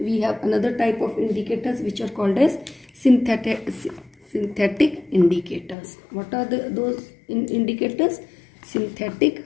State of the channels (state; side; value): drops out; right; at 5.8 s